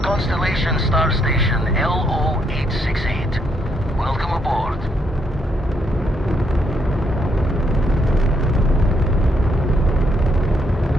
Constellation Star Station LO-868. Welcome aboard.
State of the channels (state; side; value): normal; both; correlation 0.75